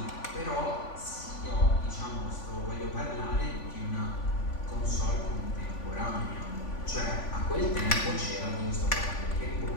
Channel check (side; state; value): right; late; 3.5 ms